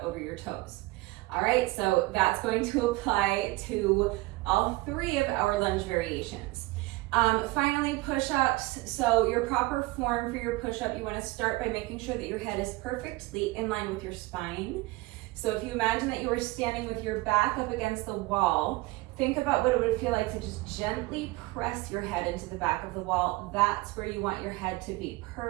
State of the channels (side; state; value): left; quieter; 21.2 dB